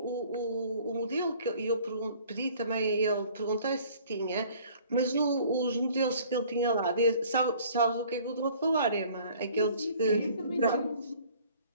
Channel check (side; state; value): both; inverted; correlation -0.53